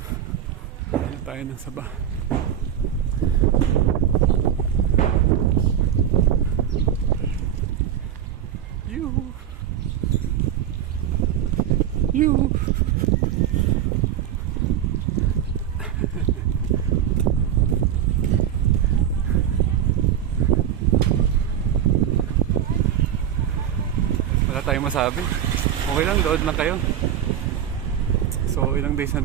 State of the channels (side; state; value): left; quieter; 9.8 dB